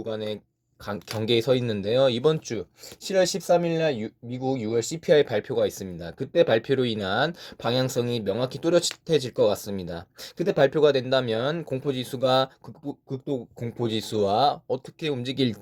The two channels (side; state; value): both; identical; correlation 1.00